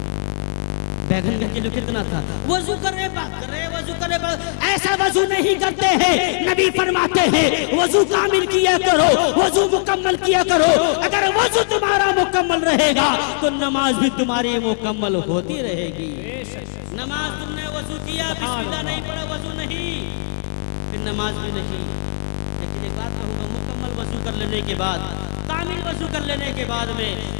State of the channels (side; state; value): right; silent; digital silence